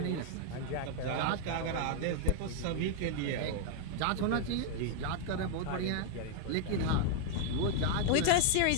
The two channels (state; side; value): different; both; correlation 0.00